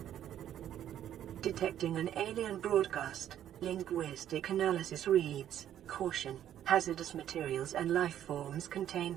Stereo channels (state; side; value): quieter; left; 10.9 dB